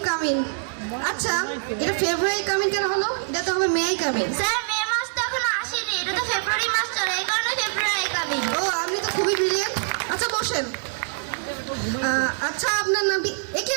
coming. আচ্ছা এটা ফেব্রুয়ারি কামিং কেন হলো? এটা তো হবে মে কামিং। স্যার মে মাস তো এখনো আসেনি, এটা তো ফেব্রুয়ারি মাস চলে, এই কারণে ফেব্রুয়ারি কামিং। ও আপনি তো খুবই ব্রিলিয়েন্ট। আচ্ছা বসেন। আচ্ছা আপনার নামটি একে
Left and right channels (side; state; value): left; silent; digital silence